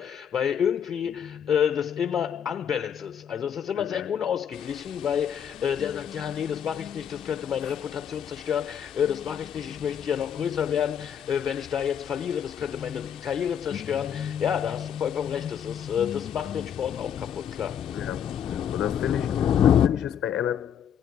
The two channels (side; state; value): right; quieter; 8.5 dB